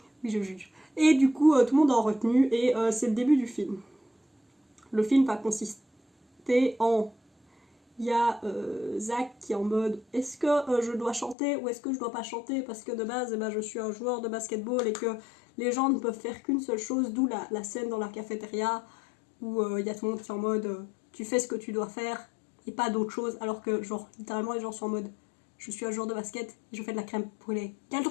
Oui, je juge. Et du coup, tout le monde est en retenue, et c'est le début du film. Le film va consister en... Il y a Zach qui est en mode est-ce que je dois chanter ou est-ce que je dois pas chanter, parce que de base je suis un joueur de basketball et que les gens ne peuvent faire qu'une seule chose, d'où la scène dans la cafétéria où il y a tout le monde qui est en mode tu fais ce que tu dois faire et pas d'autre chose, alors que genre littéralement les gens sont en mode je suis un joueur de basket et je fais de la crème brûlée. Quel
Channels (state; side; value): drops out; right; at 11.4 s